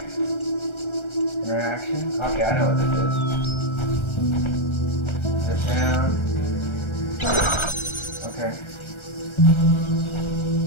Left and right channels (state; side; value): late; right; 1.3 ms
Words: Interaction. Okay, I know what this is. Sit down. Okay.